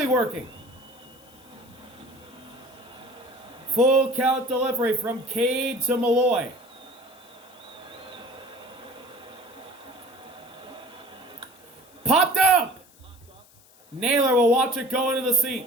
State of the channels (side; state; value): left; noise; hiss, 27 dB below the sound